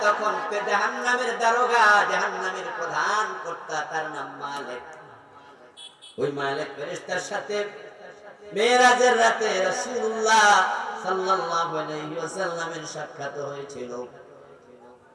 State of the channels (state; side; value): identical; both; correlation 1.00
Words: তখন জাহান্নামের দারোগা, জাহান্নামের প্রধান কর্তা, তার নাম মালিক। ওই মালিক ফেরেশতার সাথে মেরাজের রাতে রাসূলুল্লাহ সাল্লাল্লাহু আলাইহি ওয়াসাল্লামের সাক্ষাৎ হয়েছিল।